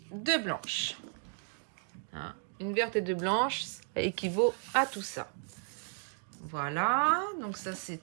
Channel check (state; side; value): silent; left; 55 dB below the other